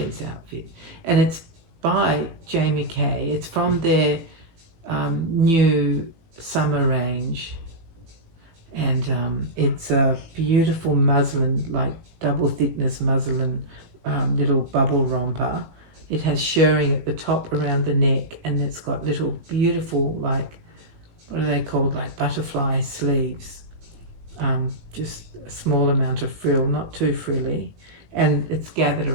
outfit. And it's by Jamie Kay. It's from their new summer range. And it's a beautiful muslin, like double thickness muslin little bubble romper. It has shirring at the top around the neck, and it's got little beautiful, like, what are they called, like butterfly sleeves. Just a small amount of frill, not too frilly, and it's gathered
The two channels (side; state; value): left; late; 18 ms